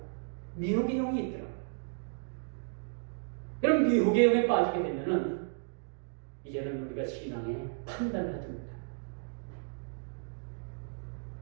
미혹의 영이 있더라고요. 그럼 미혹의 영에 빠지게 되면은 이제는 우리가 신앙에 판단을 하지 못합니다.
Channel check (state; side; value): silent; left; digital silence